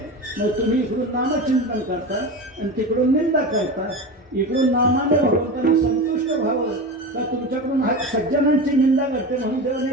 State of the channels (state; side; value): normal; both; correlation 0.26